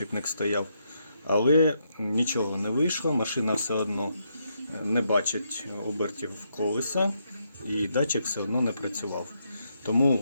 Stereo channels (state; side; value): inverted; both; correlation -0.79